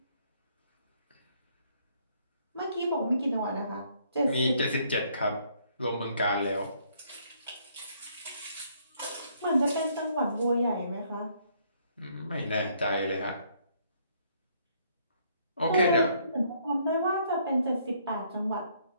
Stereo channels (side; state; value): both; inverted; correlation -0.67